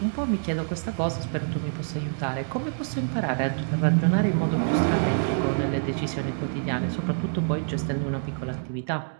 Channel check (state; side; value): silent; left; 61 dB below the other